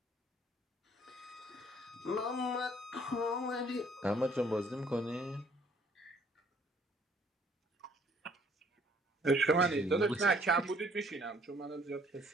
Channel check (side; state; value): both; normal; correlation 0.61